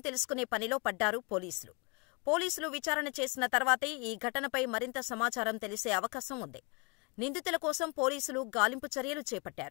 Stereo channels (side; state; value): right; quieter; 30.8 dB